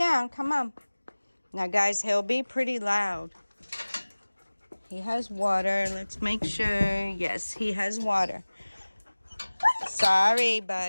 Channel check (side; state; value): both; inverted; correlation -1.00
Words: come on. Now, guys, he'll be pretty loud. He has water. Let's make sure. Yes, he has water. Sorry,